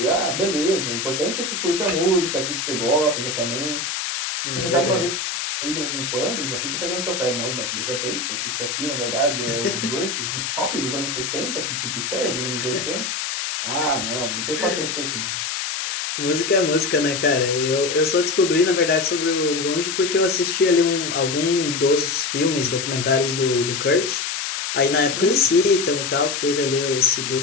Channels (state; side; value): noise; left; hiss, 3 dB below the sound